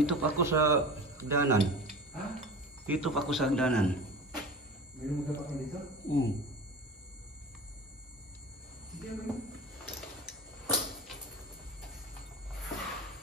pa ako sa hagdanan. Ha? Dito pa ako sa hagdanan. May lumagap ka dito? Oo. Hindi ako yun.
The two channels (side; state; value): both; normal; correlation 0.34